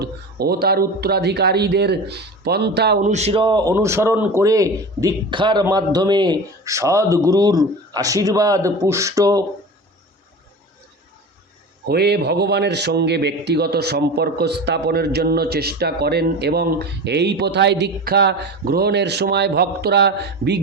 ও তার উত্তরাধিকারীদের পন্থা অনুসরণ করে দীক্ষার মাধ্যমে সদ্গুরুর আশীর্বাদ পুষ্ট হয়ে ভগবানের সঙ্গে ব্যক্তিগত সম্পর্ক স্থাপনের জন্য চেষ্টা করেন এবং এই প্রথায় দীক্ষা গ্রহণের সময় ভক্তরা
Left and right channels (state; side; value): normal; both; correlation 0.31